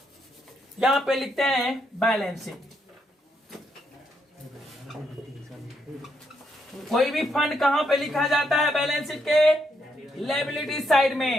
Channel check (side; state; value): both; normal; correlation 0.77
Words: यहां पे लिखते हैं बैलेंस शीट। कोई भी फंड कहां पे लिखा जाता है? बैलेंस शीट के लायबिलिटी साइड